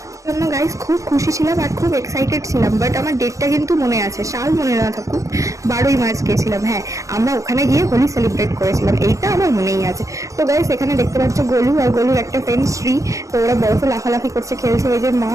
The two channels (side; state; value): left; late; 0.16 ms